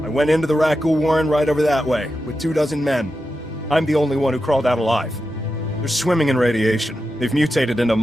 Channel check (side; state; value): both; normal; correlation 0.89